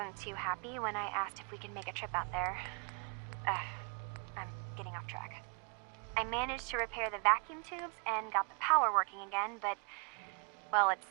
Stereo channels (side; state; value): left; quieter; 35.8 dB